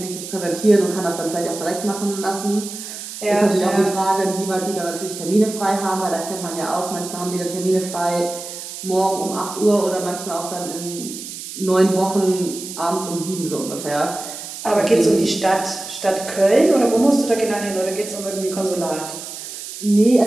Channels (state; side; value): noise; right; hiss, 10 dB below the sound